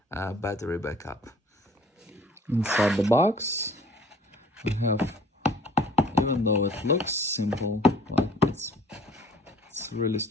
battery backup. Inside the box we have, even though it looks simple, well, it's really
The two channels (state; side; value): normal; both; correlation 0.52